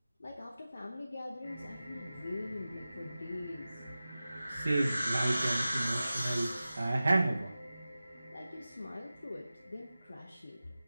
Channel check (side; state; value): both; inverted; correlation -0.95